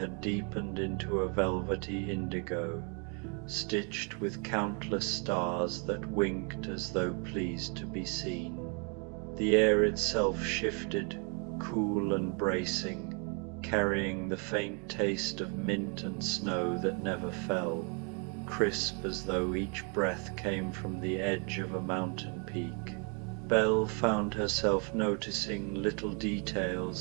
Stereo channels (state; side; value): quieter; left; 36.6 dB